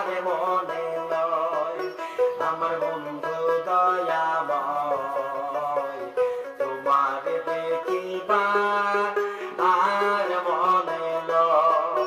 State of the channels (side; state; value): both; identical; correlation 1.00